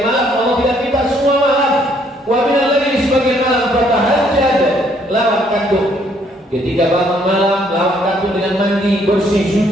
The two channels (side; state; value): both; normal; correlation 0.66